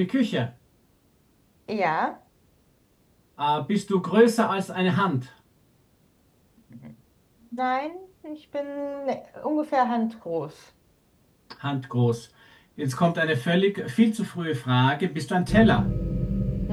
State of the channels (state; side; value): identical; both; correlation 1.00